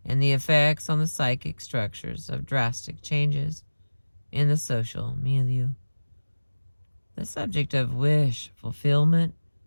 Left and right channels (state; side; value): inverted; both; correlation -1.00